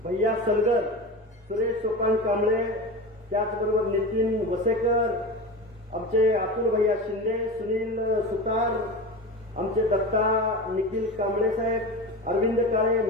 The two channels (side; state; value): both; normal; correlation 0.28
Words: भैया सलगर, सुरेश सोपान कांबळे, त्याचबरोबर नितीन वसेकर, आमचे अतुल भैया शिंदे, सुनील सुतार, आमचे दत्ता निखिल कांबळे साहेब, अरविंद काळे,